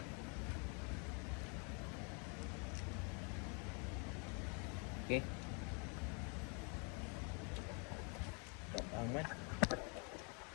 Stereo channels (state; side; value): quieter; right; 35.6 dB